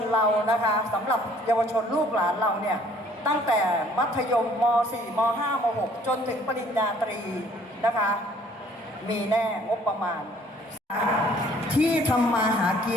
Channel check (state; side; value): normal; both; correlation 0.58